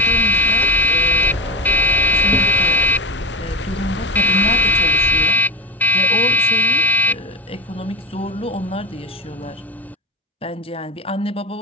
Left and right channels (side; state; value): both; normal; correlation 0.24